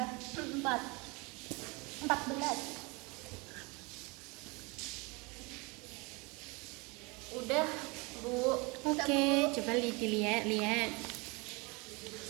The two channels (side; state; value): left; quieter; 27.3 dB